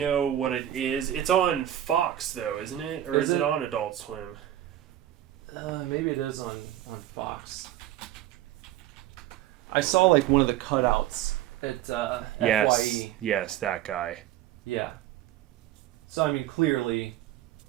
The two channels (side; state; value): left; quieter; 12.7 dB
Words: what it is. It's on Fox though, isn't it? Or is it on Adult Swim? Maybe it is on Fox. I saw like one of the cutouts at Yes. FYE. Yes, that guy. Yeah. So I mean, clearly.